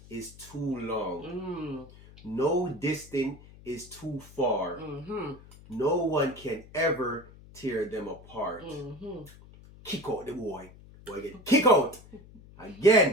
is too long. No distance is too far. No one can ever tear them apart. Kick out the boy. Boy, get kick out.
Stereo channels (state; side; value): noise; left; hum, 21 dB below the sound